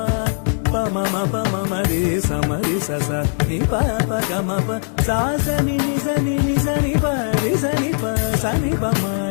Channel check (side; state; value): right; silent; 66 dB below the other